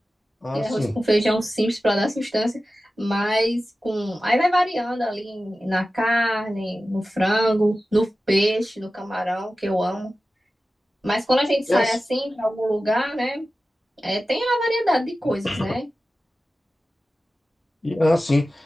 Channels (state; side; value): normal; both; correlation 0.95